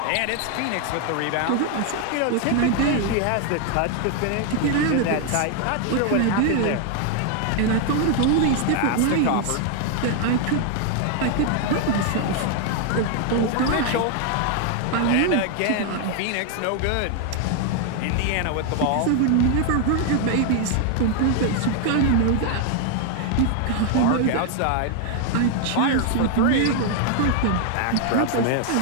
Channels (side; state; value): both; different; correlation 0.00